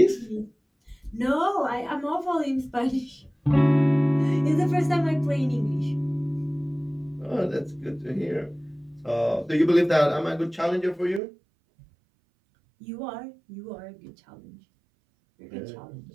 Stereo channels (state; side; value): drops out; left; at 11.2 s